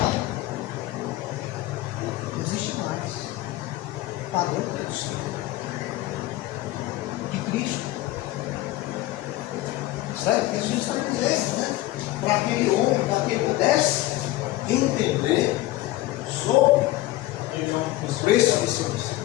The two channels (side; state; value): right; quieter; 16.7 dB